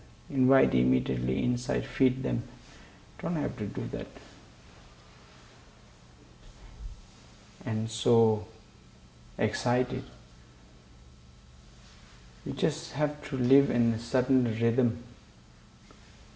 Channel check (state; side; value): identical; both; correlation 1.00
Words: Invite immediately inside, feed them. Don't have to do that. And so excited. You just have to live in a certain rhythm.